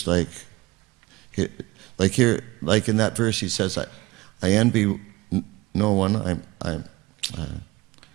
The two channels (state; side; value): quieter; left; 20.7 dB